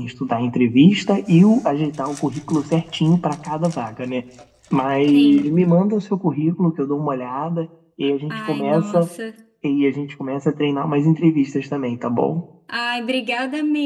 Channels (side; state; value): both; identical; correlation 1.00